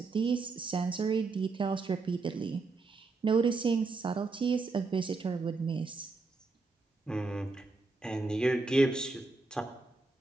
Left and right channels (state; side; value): quieter; left; 3.9 dB